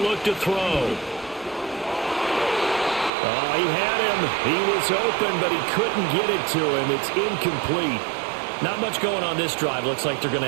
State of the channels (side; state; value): left; drops out; at 3.1 s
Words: to throw. Oh, he had him. He was open, but he couldn't get it to him. It's incomplete. Not much going on this drive. Looks like they're going to